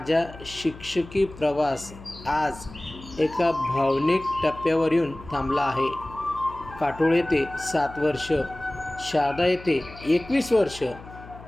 शिक्षकी प्रवास आज एका भावनिक टप्प्यावर येऊन थांबला आहे. काटोळ येथे 7 वर्ष, शारदा येथे 21 वर्ष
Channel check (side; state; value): left; noise; hum, 17 dB below the sound